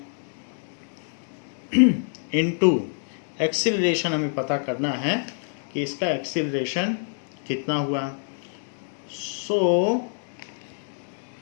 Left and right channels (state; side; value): silent; right; 61 dB below the other